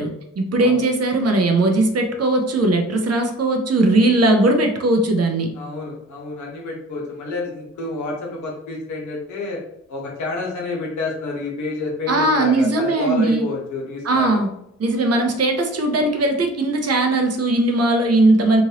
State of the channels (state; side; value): normal; both; correlation 0.46